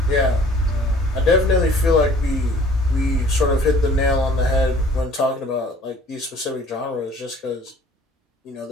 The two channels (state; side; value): normal; both; correlation 0.53